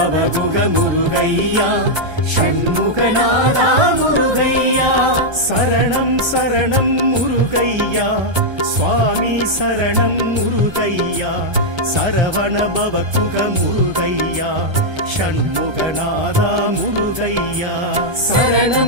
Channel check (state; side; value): late; left; 1.3 ms